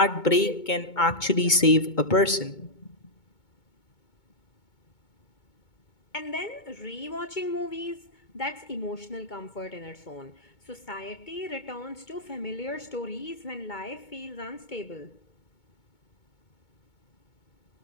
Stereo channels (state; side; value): late; right; 2.2 ms